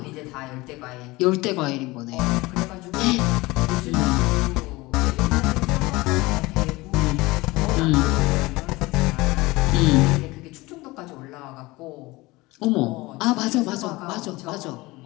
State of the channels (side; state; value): right; quieter; 21.4 dB